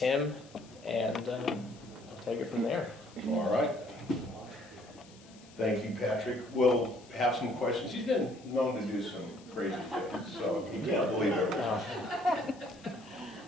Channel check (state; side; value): noise; left; hiss, 24 dB below the sound